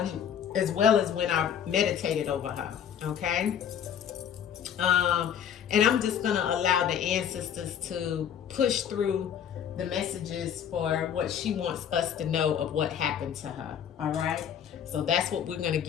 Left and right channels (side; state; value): right; quieter; 8.7 dB